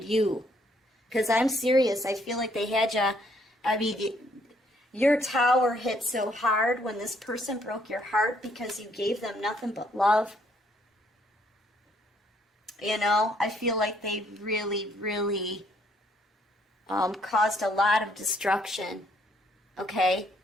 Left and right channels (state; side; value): normal; both; correlation 0.68